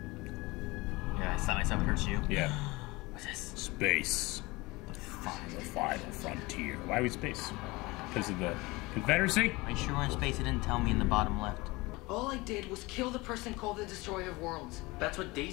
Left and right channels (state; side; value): quieter; right; 22.8 dB